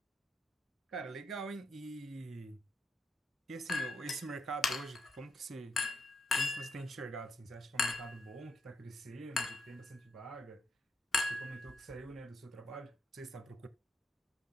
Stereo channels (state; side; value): normal; both; correlation 0.80